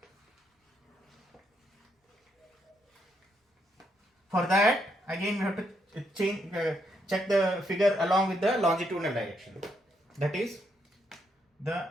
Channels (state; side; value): normal; both; correlation 0.77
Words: For that, again we have to check the figure along with the longitudinal direction. That is the